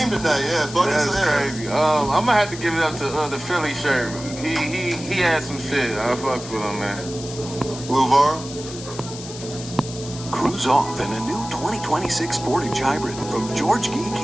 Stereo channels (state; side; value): noise; left; hiss, 12 dB below the sound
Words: tonight, yeah. Fucking That's crazy. I'm gonna have to give it up to the Philly shirt. He had some shit. I fucks with him, man. Luvar. Cruise off in a new 2026 Sportage Hybrid from George Gee